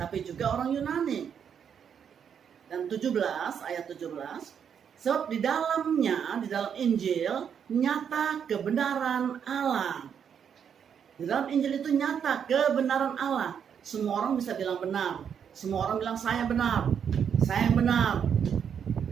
juga orang Yunani. Dan 17, ayat 17. Sebab di dalam Injil, nyata kebenaran Allah. Di dalam Injil itu nyata kebenaran Allah. Semua orang bisa bilang benar. Semua orang bilang saya benar. Saya yang benar.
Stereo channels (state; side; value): quieter; left; 7.8 dB